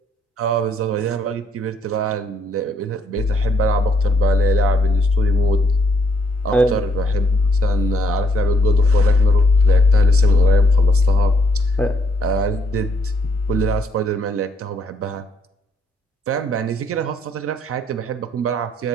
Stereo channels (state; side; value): normal; both; correlation 0.70